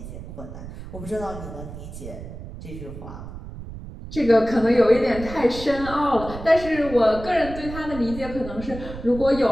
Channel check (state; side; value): noise; right; rumble, 11 dB below the sound